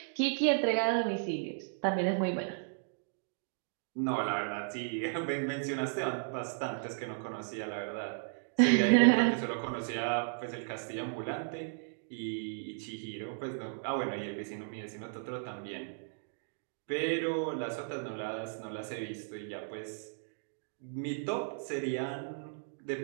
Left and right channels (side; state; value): left; silent; digital silence